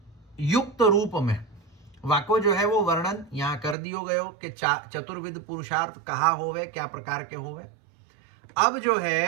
युक्त रूप में वाको जो है वो वर्णन यहाँ कर दियो गयो कि चतुर्विध पुरुषार्थ कहा होवे, क्या प्रकार के होवे। अब जो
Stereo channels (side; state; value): left; drops out; at 3.8 s